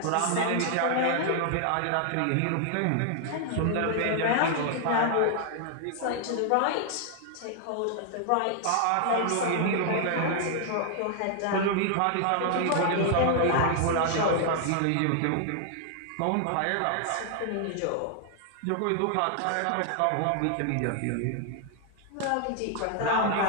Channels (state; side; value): different; both; correlation 0.00